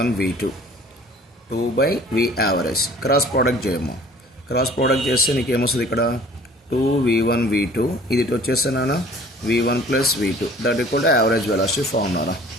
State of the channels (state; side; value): normal; both; correlation 0.50